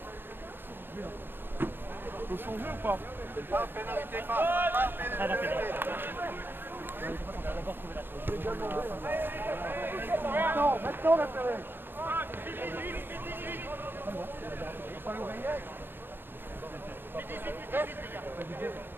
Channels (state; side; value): late; left; 0.10 ms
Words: Faut changer ou pas? Pas pénalité, pas pénalité. Maintenant la pénalité.